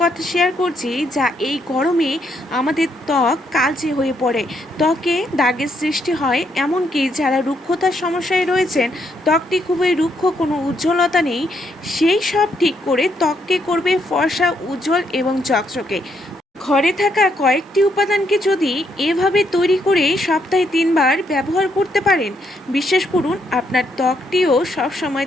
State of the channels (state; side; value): normal; both; correlation 0.75